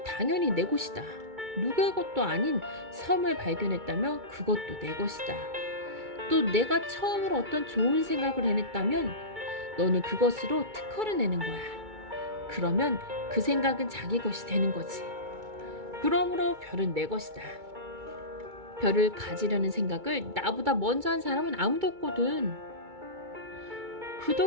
당연히 내 것이다. 누구의 것도 아닌 섬을 발견했다면 그것도 내 것이다. 또 내가 처음으로 어떤 좋은 생각을 해냈다면 너는 그것으로 특허를 내는 거야. 그러면 그 생각은 자기 것이 되는 거지. 그러므로 별은 내 것이다. 별을 가지려는 생각을 나보다 먼저 한 사람은 아무도 없거든.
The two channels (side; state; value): left; late; 2.3 ms